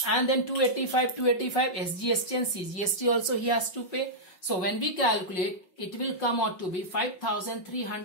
and then 285 SGST and CGST also he has to pay. So when we calculate, it will come out to be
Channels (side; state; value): right; late; 5.4 ms